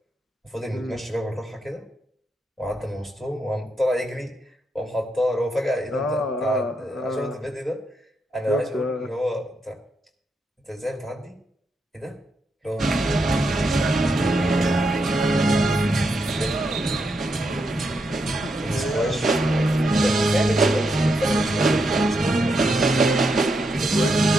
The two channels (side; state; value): both; normal; correlation 0.82